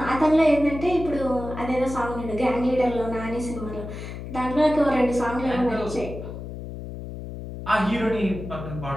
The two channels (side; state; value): left; noise; hum, 9 dB below the sound